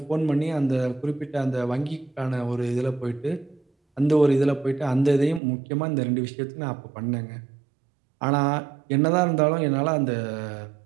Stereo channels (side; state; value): left; drops out; at 5.4 s